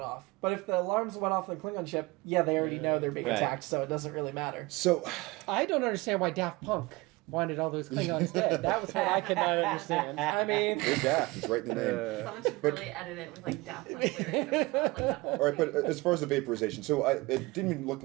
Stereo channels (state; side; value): quieter; left; 22.8 dB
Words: off. But if the alarms went off on the Klingon ship, yeah, they already know they're being Right. attacked, so it doesn't really matter. So, I don't understand why Daft Punk wanted all those Klingons dead. That was what I could not understand. I mean, they're daft. It's right in the name. Someone should really edit it with like Daft Punk lyrics. That would sound like that whole All right, thing. but as far as the vaporization, so it didn't even look